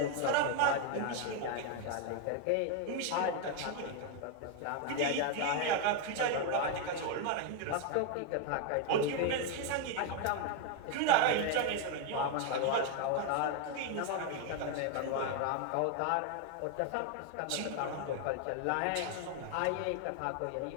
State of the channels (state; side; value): different; both; correlation 0.01